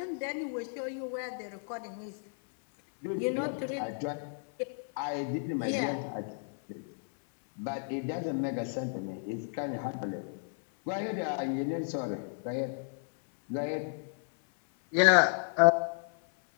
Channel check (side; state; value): right; silent; 56 dB below the other